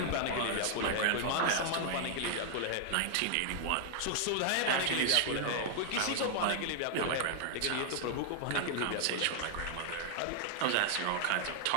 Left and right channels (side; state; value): both; different; correlation 0.00